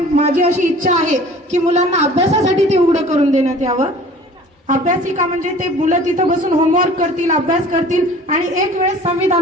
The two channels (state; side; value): normal; both; correlation 0.47